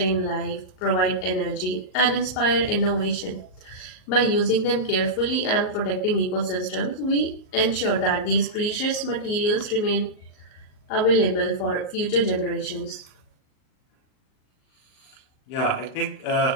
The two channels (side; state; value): right; late; 38 ms